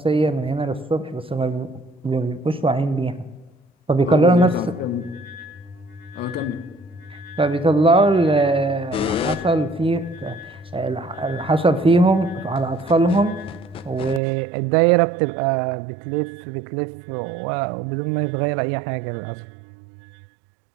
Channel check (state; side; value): drops out; left; at 14.2 s